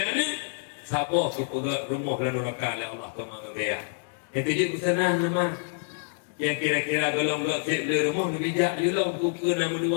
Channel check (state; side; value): silent; right; digital silence